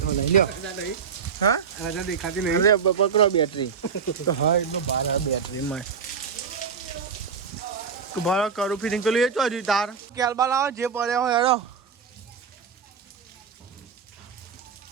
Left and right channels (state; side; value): quieter; left; 6.2 dB